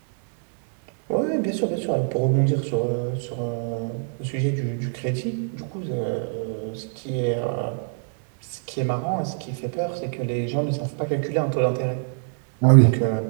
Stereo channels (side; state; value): left; silent; 62 dB below the other